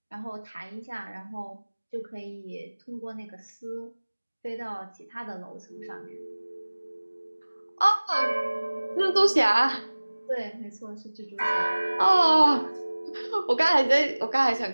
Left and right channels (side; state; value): both; inverted; correlation -1.00